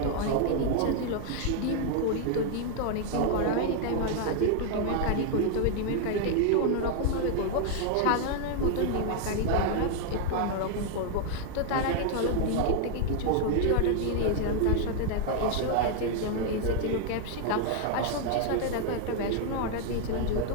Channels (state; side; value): different; both; correlation 0.00